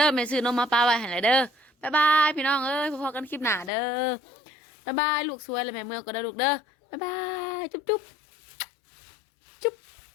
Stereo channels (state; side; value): drops out; right; at 3.7 s